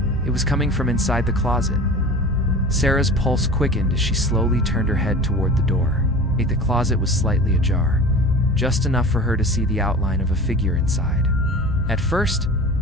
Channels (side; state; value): both; normal; correlation 0.37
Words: It was coming from inside the closet. Sarah's pulse quickened as she slowly turned her head toward the door. The closet was slightly ajar, just enough for her to see the outline of a figure inside. At first,